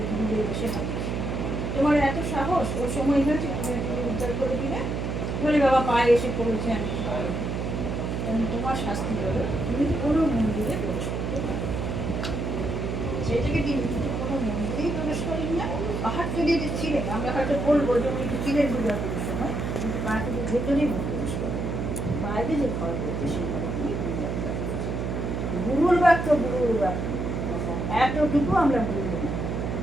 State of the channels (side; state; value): right; noise; hum, 2 dB below the sound